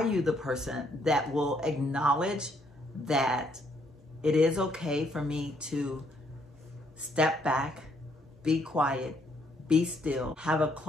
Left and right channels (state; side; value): normal; both; correlation 0.70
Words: you the person that will acknowledge that it is okay for me to step back, be quiet, be still, have a